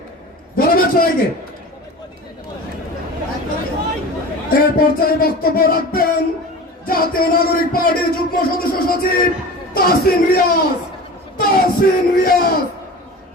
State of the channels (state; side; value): normal; both; correlation 0.35